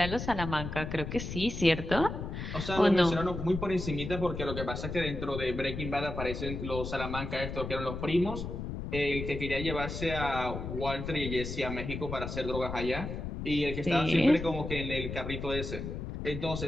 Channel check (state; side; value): noise; left; rumble, 6 dB below the sound